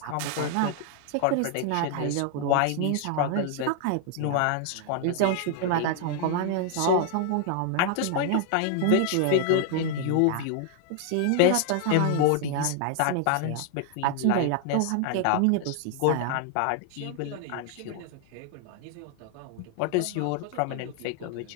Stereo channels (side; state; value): both; different; correlation 0.00